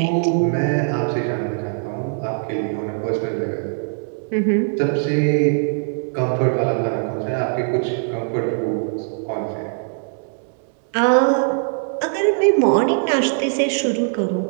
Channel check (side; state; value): left; silent; 65 dB below the other